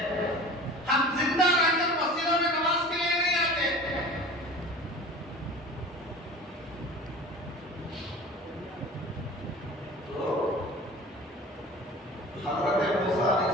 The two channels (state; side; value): normal; both; correlation 0.39